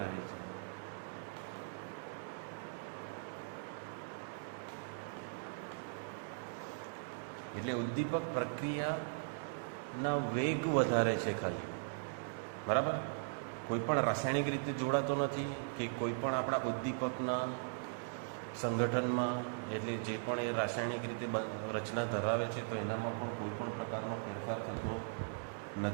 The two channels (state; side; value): silent; left; digital silence